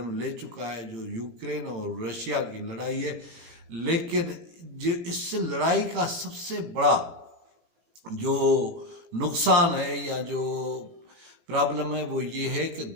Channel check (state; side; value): late; left; 17 ms